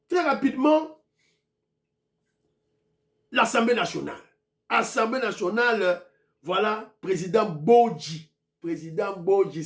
très rapidement, l'Assemblée nationale. Assemblée nationale, voilà, président Bodji. Président Bodji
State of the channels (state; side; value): identical; both; correlation 1.00